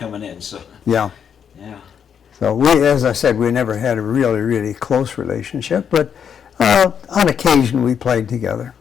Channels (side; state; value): right; quieter; 7.8 dB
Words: in. So. Yeah. Yeah. So as I said, we never had a really close relationship, but on occasion we played together.